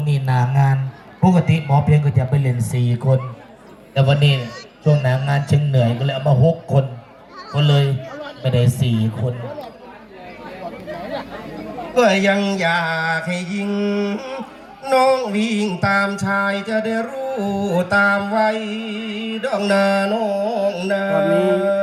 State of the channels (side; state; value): both; identical; correlation 1.00